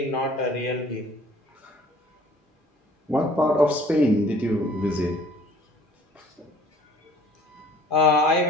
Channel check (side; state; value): both; normal; correlation 0.53